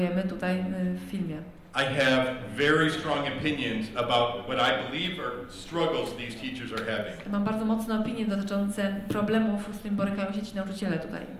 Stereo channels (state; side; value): identical; both; correlation 1.00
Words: tutaj w filmie. I have very strong opinions about what I believe are struggles these teachers are having. Mam bardzo mocne opinie dotyczące problemów, z którymi borykają się ci nauczyciele tutaj.